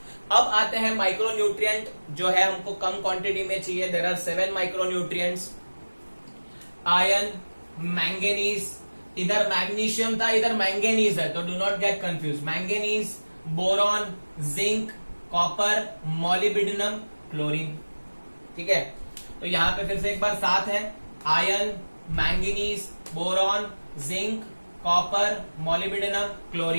अब आते हैं माइक्रोन्यूट्रिएंट जो है हमको कम क्वांटिटी में चाहिए। There are 7 micronutrients. Iron, manganese, इधर मैग्नीशियम था इधर मैंगनीज है, तो do not get confuse. Manganese, boron, zinc, copper, molybdenum, chlorine. ठीक है, तो यहां पे फिर से एक बार 7 है। Iron, manganese, boron, zinc, copper, molybdenum,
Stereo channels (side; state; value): both; inverted; correlation -1.00